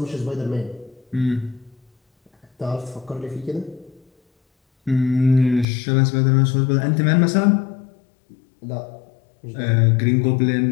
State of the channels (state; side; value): drops out; right; at 5.7 s